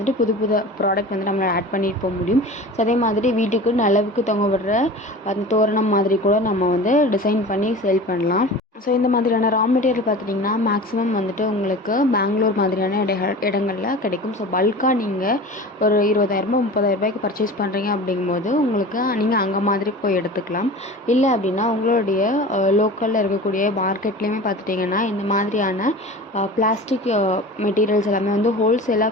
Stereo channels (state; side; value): normal; both; correlation 0.36